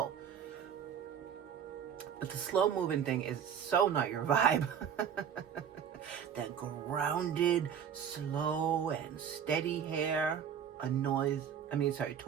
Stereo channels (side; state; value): left; quieter; 8.2 dB